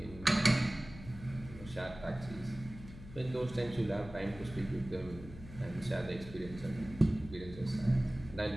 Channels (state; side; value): noise; left; hum, 15 dB below the sound